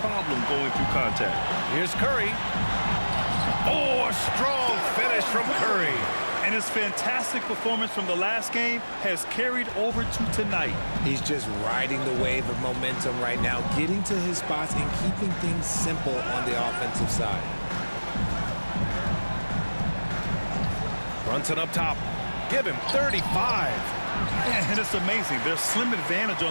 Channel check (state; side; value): inverted; both; correlation -1.00